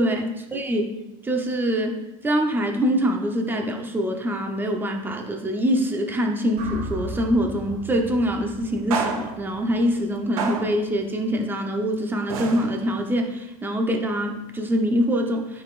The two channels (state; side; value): normal; both; correlation 0.57